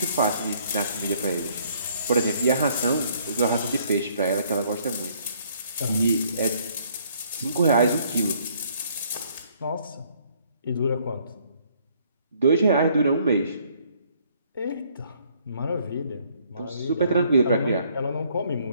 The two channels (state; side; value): inverted; both; correlation -0.64